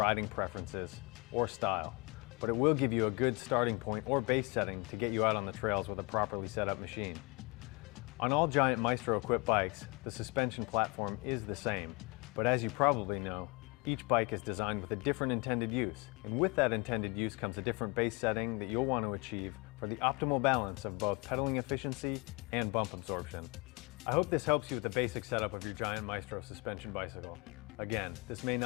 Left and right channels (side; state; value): right; quieter; 29.1 dB